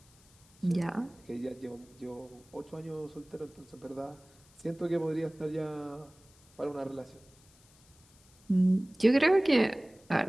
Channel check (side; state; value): left; noise; hiss, 28 dB below the sound